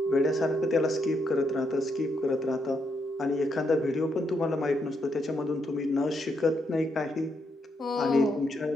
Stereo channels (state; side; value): normal; both; correlation 0.78